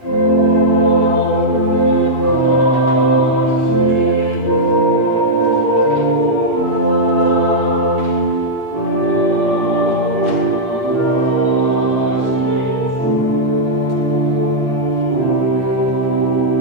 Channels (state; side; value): late; left; 8.4 ms